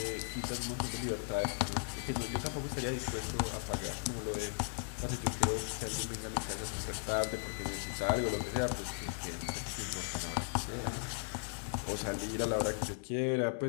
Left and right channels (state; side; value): silent; right; 53 dB below the other